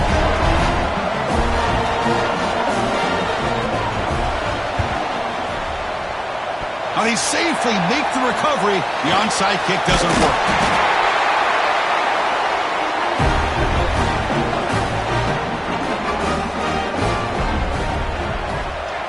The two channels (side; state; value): both; identical; correlation 1.00